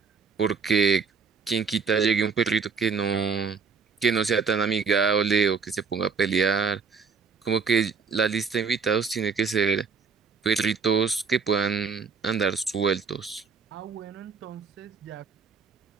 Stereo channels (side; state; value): left; quieter; 5.5 dB